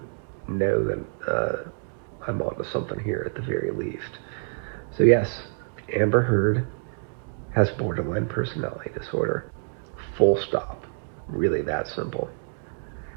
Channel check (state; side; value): silent; left; digital silence